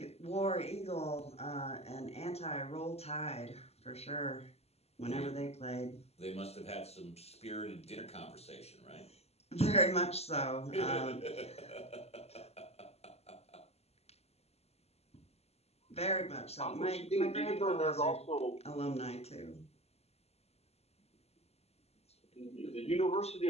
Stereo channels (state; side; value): late; right; 0.30 ms